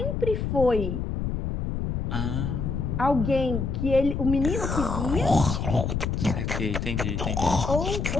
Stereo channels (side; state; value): left; noise; rumble, 2 dB below the sound